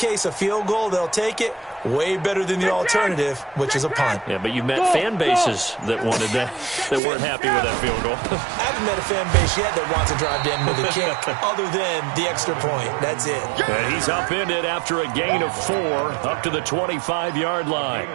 a field goal, they'll take it. Way better than the alternative, which is a punt. Yeah, but you've met fan bases that wanted that weren't happy with that field goal. I haven't met a fan base yet that wants to drive to end with a kick, other than the extra point. That's it. And he's upended after a gain of 4 up to the 25-yard line.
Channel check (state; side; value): drops out; left; at 7.0 s